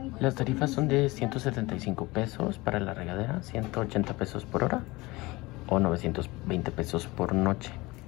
Las tarifas son de 175 pesos para la regadera, 180 pesos por hora o 920 pesos por noche.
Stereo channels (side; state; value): right; quieter; 21.8 dB